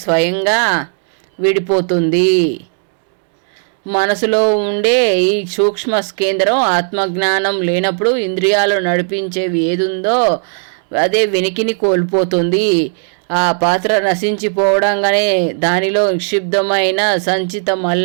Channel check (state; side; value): silent; left; 59 dB below the other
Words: స్వయంగా విడిపోతుంది. మనసులో ఉండే ఈ సూక్ష్మ కేంద్రం ఆత్మజ్ఞానం లేనప్పుడు ఇంద్రియాలు నడిపించేవి ఏదుందో అదే వెనికిని కోల్పోతుంది. ఆ పాత్ర నశించిపోవడంగానే దానిలో నిక్షిప్తమైన సంచిత